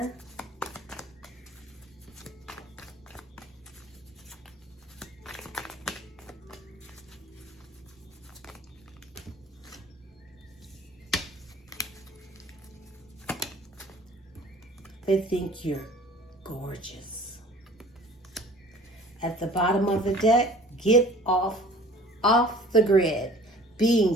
They think you're gorgeous. At the bottom of the deck, get off the grid.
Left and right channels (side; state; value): both; normal; correlation 0.48